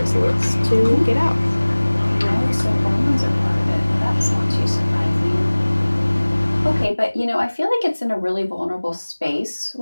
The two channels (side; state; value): both; inverted; correlation -1.00